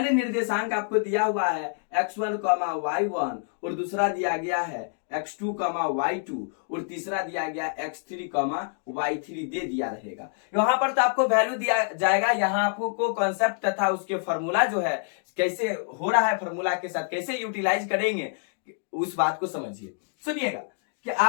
निर्देशांक आपको दिया हुआ है x1, y1 और दूसरा दिया गया है x2 कॉमा y2 और तीसरा दिया गया x3 कॉमा y3 दे दिया रहेगा। यहाँ पर तो आपको वैल्यू दिया जाएगा, यहाँ आपको कॉन्सेप्ट तथा उसके फॉर्मूला जो है कैसे हो रहा है, फॉर्मूला के साथ कैसे यूटिलाइज करेंगे उस बात को समझिए। सुनिएगा कि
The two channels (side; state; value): right; silent; digital silence